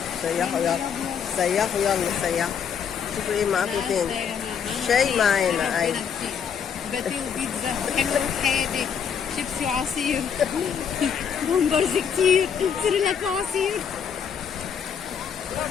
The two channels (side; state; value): right; quieter; 7.4 dB